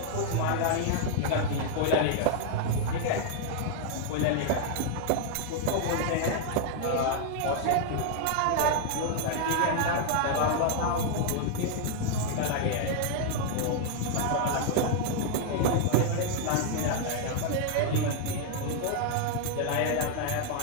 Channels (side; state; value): both; different; correlation 0.00